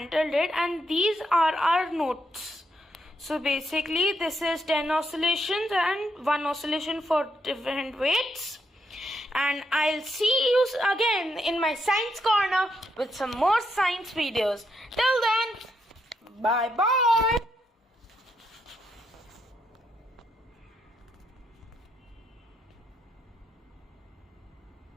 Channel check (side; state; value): both; normal; correlation 0.79